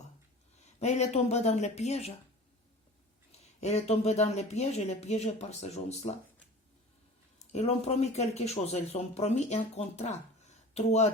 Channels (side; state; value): both; normal; correlation 0.39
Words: Mais elle est tombée dans le piège. Elle est tombée dans le piège, elle est piégée par ces gens-là. Ils ont promis quelque chose, ils ont promis un contrat. 3